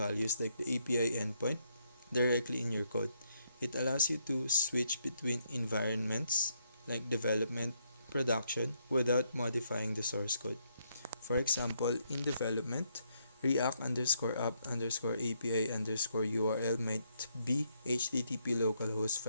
like the API endpoint directly in your code. It allows you to switch between environments like development, production without modifying the source code. For example, in development, React underscore app underscore API underscore URL might be HTTP localhost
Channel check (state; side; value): inverted; both; correlation -0.76